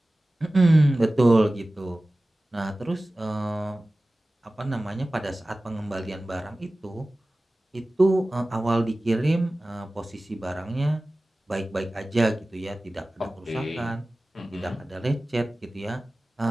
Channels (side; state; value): both; normal; correlation 0.97